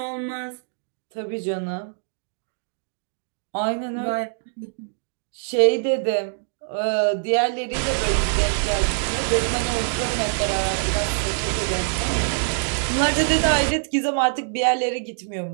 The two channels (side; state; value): left; silent; digital silence